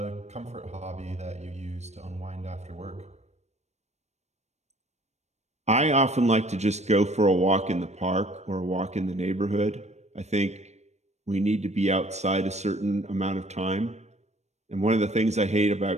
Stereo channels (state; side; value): late; left; 0.32 ms